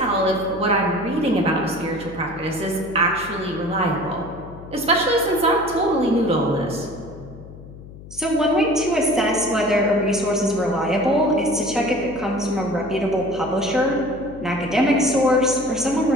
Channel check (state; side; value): noise; left; hum, 16 dB below the sound